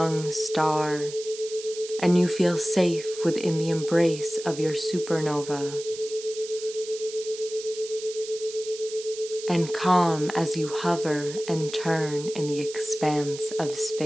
star, and you feel safe within the embrace of your supernova, and calm as you hover and turn in the expanse of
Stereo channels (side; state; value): right; noise; hiss, 12 dB below the sound